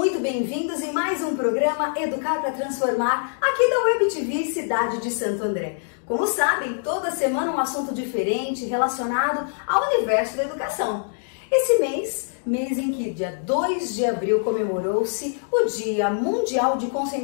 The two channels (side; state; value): right; silent; digital silence